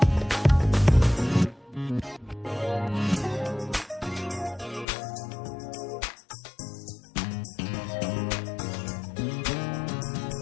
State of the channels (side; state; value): right; drops out; at 4.9 s